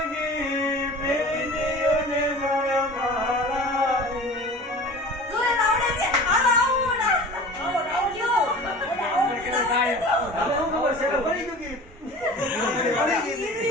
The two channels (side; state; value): both; normal; correlation 0.39